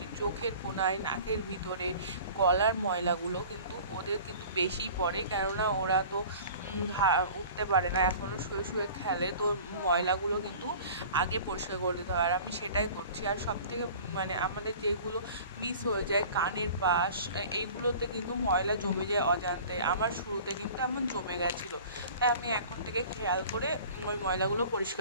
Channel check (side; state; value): both; inverted; correlation -0.44